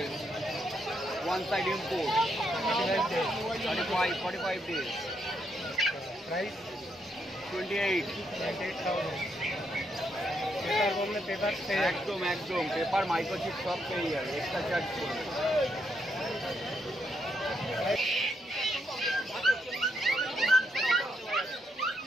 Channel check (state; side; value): normal; both; correlation 0.77